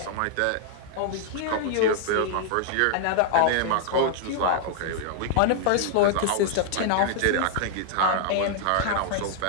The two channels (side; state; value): both; different; correlation 0.00